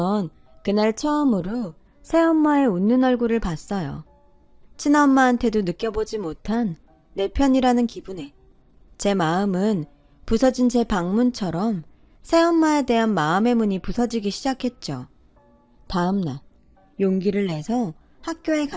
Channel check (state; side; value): identical; both; correlation 1.00